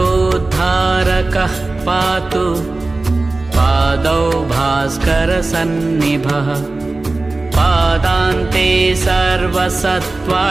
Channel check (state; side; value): quieter; left; 3.2 dB